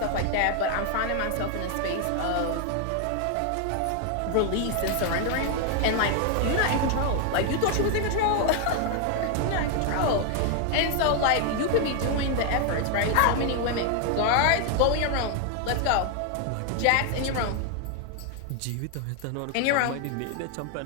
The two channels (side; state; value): both; different; correlation 0.01